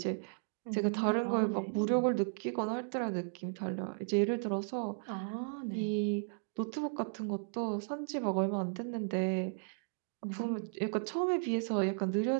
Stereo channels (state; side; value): silent; left; digital silence